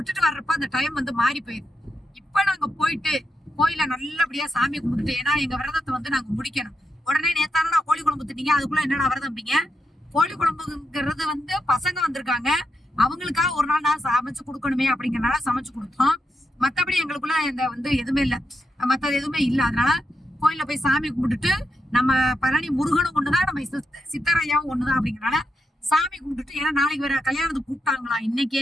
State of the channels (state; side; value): normal; both; correlation 0.85